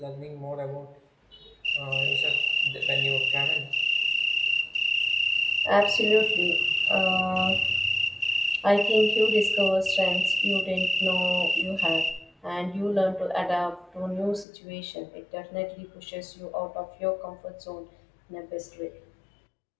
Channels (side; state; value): right; drops out; at 14.5 s